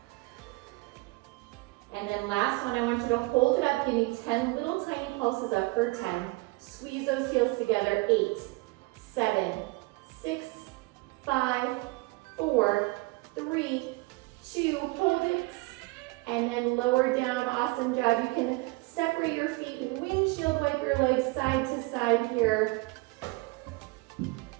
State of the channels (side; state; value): left; quieter; 24.0 dB